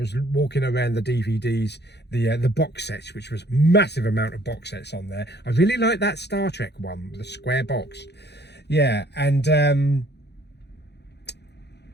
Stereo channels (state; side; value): late; right; 0.49 ms